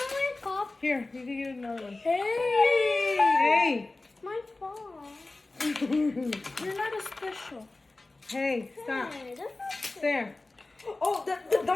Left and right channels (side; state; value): right; quieter; 3.2 dB